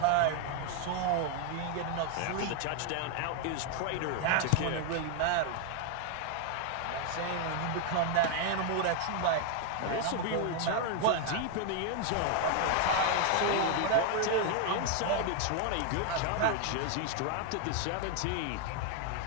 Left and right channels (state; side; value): different; both; correlation 0.01